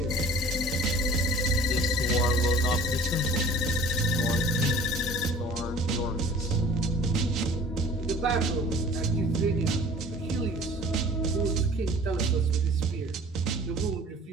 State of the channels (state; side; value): normal; both; correlation 0.46